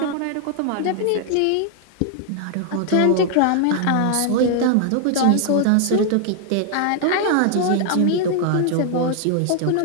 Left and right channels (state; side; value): different; both; correlation 0.00